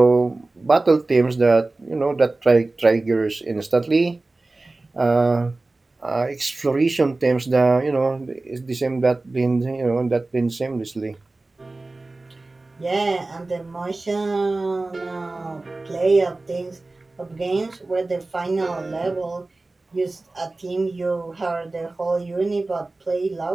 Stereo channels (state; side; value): quieter; left; 3.2 dB